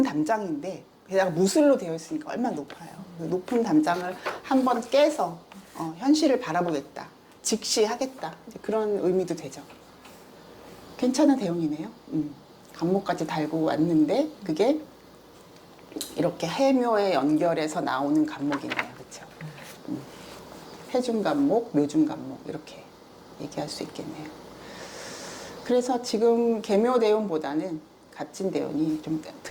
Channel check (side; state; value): both; identical; correlation 1.00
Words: 담장인데 게다가 무술로 되어 있으니까 얼마나 높아요. 그 높은 담장을 한번 깨서 현실을 바라보겠다. 직시하겠다. 이제 그런 의미도 되죠. 괜찮은 대운이네요. 간목까지 달고 왔는데 그게 이렇게 해묘에 연결해서 나오는 간목이네요. 그렇죠? 해중 간목, 묘중 간목 이렇게 얘기할 수 있겠네요. 그래서 지금 계묘 대운보다는 갓진 대운이 좀